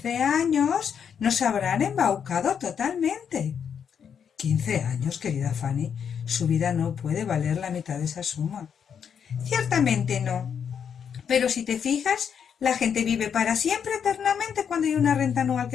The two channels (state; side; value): quieter; right; 7.5 dB